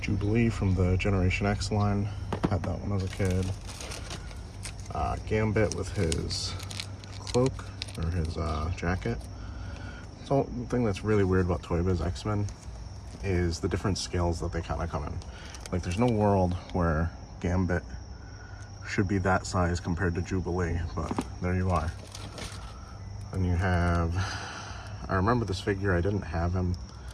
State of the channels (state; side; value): identical; both; correlation 1.00